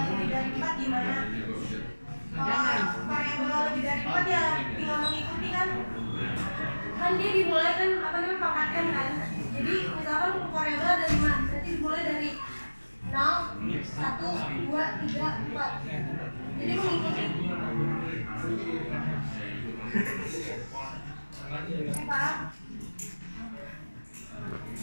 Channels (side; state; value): both; inverted; correlation -1.00